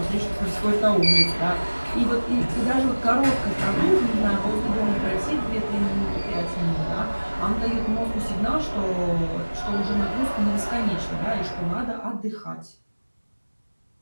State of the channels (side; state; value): both; inverted; correlation -1.00